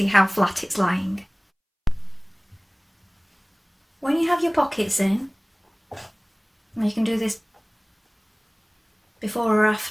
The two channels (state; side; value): identical; both; correlation 1.00